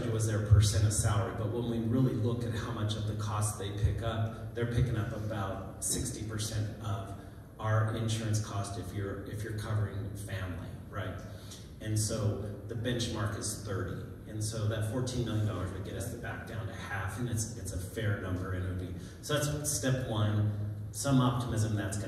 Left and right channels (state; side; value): identical; both; correlation 1.00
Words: you was their percent of salary, but when we really look at how much of the cost they pick up, they're picking up about 60% of our insurance cost if you're covering family, right? And so the benchmark is 30. And so that $14 million would get us back down to half, and it's a fair number, and it would be, so that's step one, some optimism that's